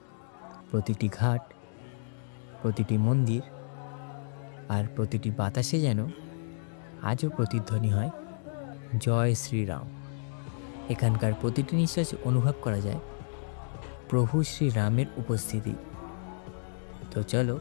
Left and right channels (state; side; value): silent; right; digital silence